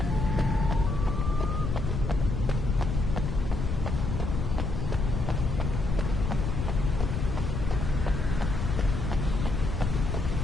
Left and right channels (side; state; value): left; noise; rumble, 2 dB below the sound